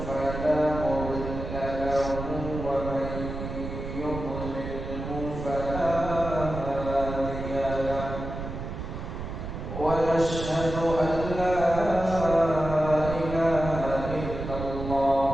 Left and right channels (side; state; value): right; noise; rumble, 7 dB below the sound